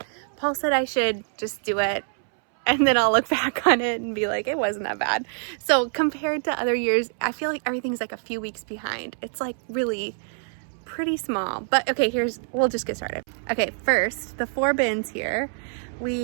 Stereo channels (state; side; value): silent; left; 62 dB below the other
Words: Paul said I should just do it and then I'll look back on it and be like, it wasn't that bad. So compared to other years, I feel like everything's like a few weeks behind. It's like really pretty small, but okay, we'll just get started. Okay, first, the 4 bins here.